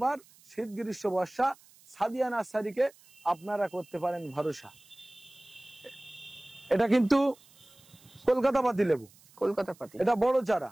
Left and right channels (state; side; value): noise; right; hiss, 27 dB below the sound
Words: শীত গ্রীষ্ম বর্ষা সাদিয়া নার্সারিকে আপনারা করতে পারেন ভরসা। এটা কিন্তু কলকাতা পাতি লেবু, কলকাতা পাতি। এটা বড় চারা,